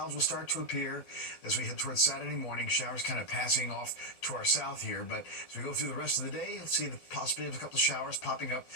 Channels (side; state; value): right; late; 12 ms